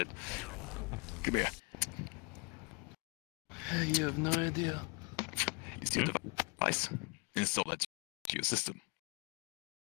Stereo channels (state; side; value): quieter; right; 31.0 dB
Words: Come here. You have no idea. Use your device. Install that to your system.